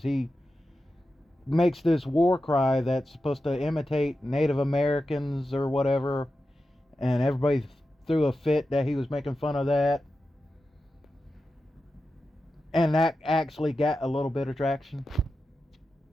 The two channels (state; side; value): normal; both; correlation 0.91